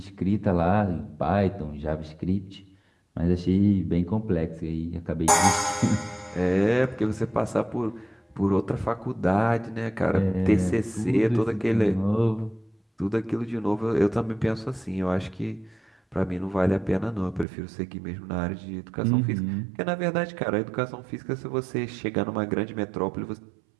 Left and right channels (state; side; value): drops out; left; at 17.4 s